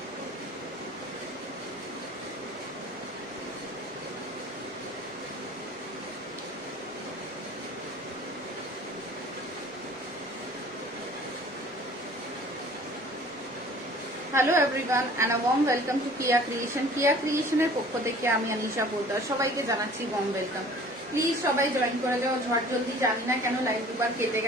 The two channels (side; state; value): both; normal; correlation 0.48